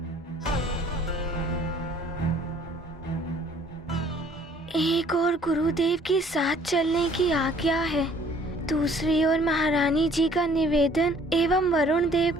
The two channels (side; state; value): both; normal; correlation 0.57